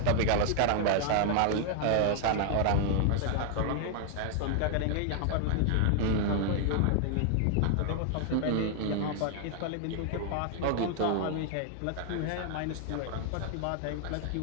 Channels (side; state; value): both; different; correlation 0.00